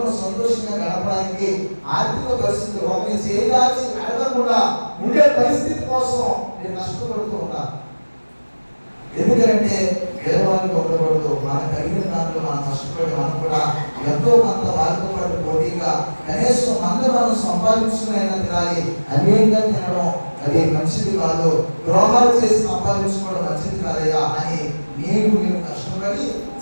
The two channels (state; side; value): inverted; both; correlation -1.00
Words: సంతోషంగా గడపడానికి ఆర్థిక పరిస్థితులు ఒకరిని చేయాల్సి అడగకుండా ఉండే పరిస్థితి కోసం నేను కష్టపడుతూ ఉన్నాను. ఎందుకంటే పేదవాళ్ళకి ఉండకూడదు. మనకు కలిగిన దాంట్లో మనం కష్టపడి మనం కూడా ఎంతో కొంత వారితో పాటు పోటీగా కనీసం మనం సంపాదించుకునైనా తినాలి. అన్యంగా తినడం అది మంచిది కాదు, ద్రోహాలు చేసి సంపాదించుకోవడం మంచిది కాదయ్యా అని మేము కష్టపడి